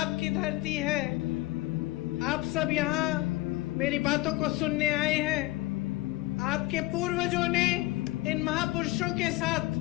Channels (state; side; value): quieter; right; 19.3 dB